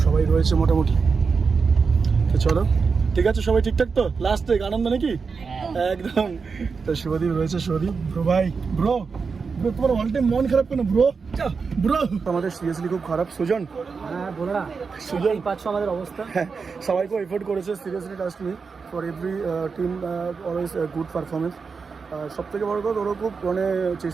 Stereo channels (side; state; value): left; quieter; 5.1 dB